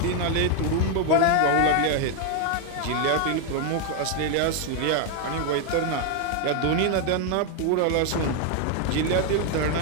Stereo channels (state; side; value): different; both; correlation 0.01